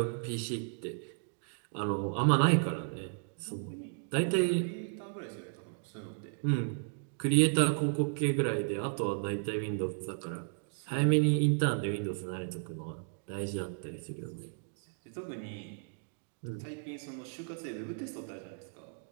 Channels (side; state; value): left; silent; digital silence